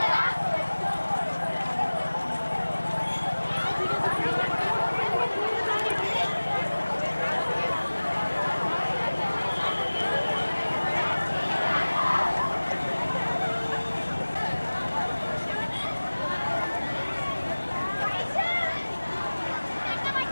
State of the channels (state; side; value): inverted; both; correlation -1.00